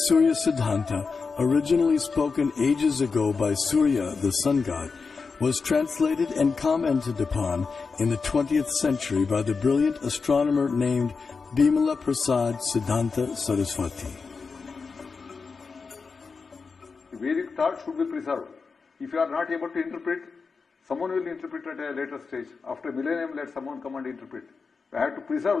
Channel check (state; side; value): quieter; right; 4.8 dB